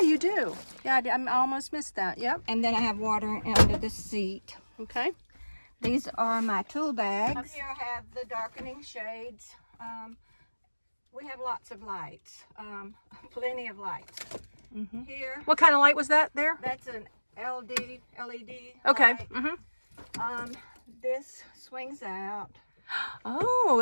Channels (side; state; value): both; inverted; correlation -1.00